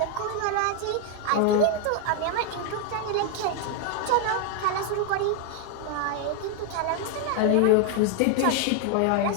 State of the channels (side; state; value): both; different; correlation 0.01